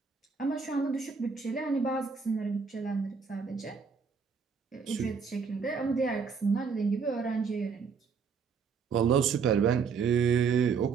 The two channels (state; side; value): quieter; left; 5.7 dB